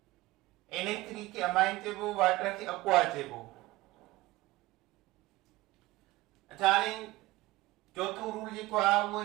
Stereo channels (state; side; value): quieter; left; 18.9 dB